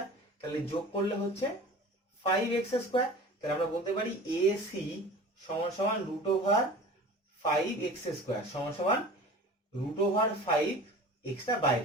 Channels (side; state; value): both; normal; correlation 0.39